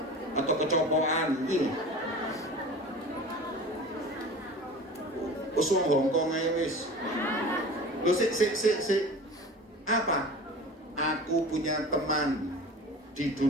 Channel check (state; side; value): normal; both; correlation 0.37